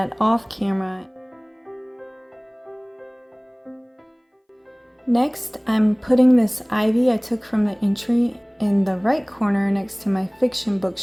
off camera. Next, I'm putting this ivy I took from the entry in the right corner next to my fiction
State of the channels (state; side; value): identical; both; correlation 1.00